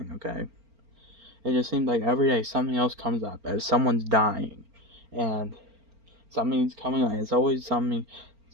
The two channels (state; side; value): late; left; 4.4 ms